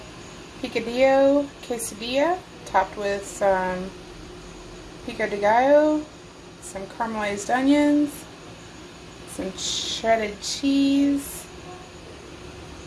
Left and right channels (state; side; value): identical; both; correlation 1.00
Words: Picadillo quesadilla topped with some pico de gallo, some caramelized onions, some shredded cheese,